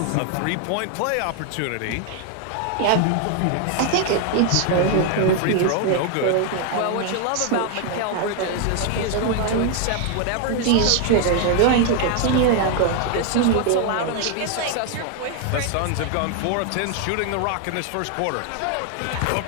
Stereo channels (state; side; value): different; both; correlation 0.00